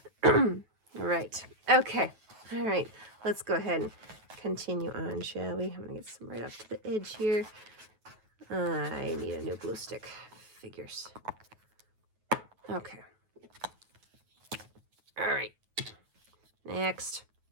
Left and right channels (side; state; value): left; late; 9.2 ms